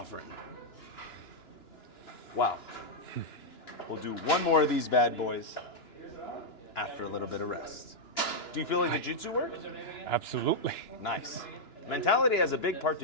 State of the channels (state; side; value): late; right; 2.9 ms